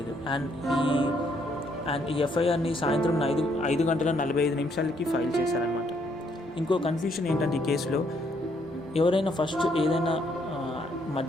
అండ్ ఈ ఎఫ్ఐఆర్ని సాయంత్రం 5 గంటల 45 నిమిషాలకి ఫైల్ చేశారనమాట. ఇంకో కన్ఫ్యూషన్ ఏంటంటే, ఈ కేసులో ఎవరైనా ఫస్ట్ ఏదైనా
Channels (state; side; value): normal; both; correlation 0.71